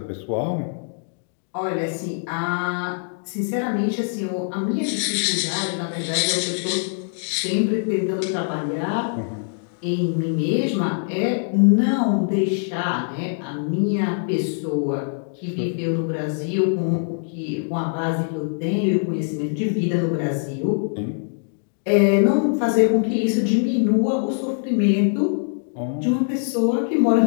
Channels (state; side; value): silent; right; digital silence